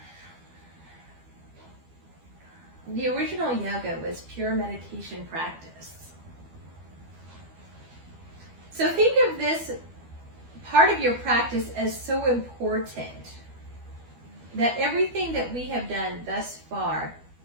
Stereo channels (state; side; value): late; left; 12 ms